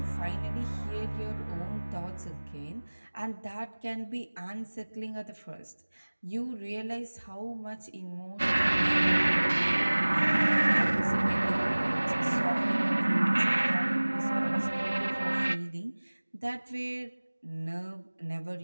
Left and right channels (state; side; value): inverted; both; correlation -1.00